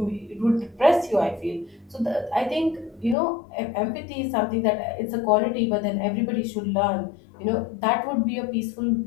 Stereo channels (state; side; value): drops out; right; at 3.2 s